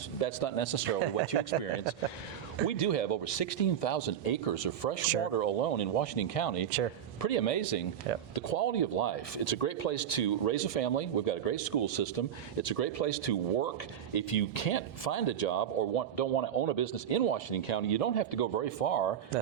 that's not necessarily what you experience. We do have over 16,000 acres of fresh water alone in Washington County. Sure. Pretty amazing. Yeah. The quality of life. It's a great place to raise a family. We've got a great school system. It's a great place to work. If you can't find a job or don't want to own a business in Washington County, you don't have to go very far.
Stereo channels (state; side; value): quieter; left; 9.5 dB